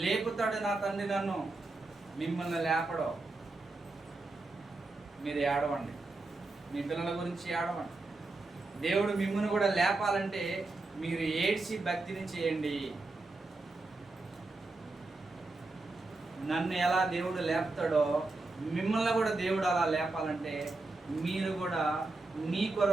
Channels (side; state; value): left; quieter; 3.2 dB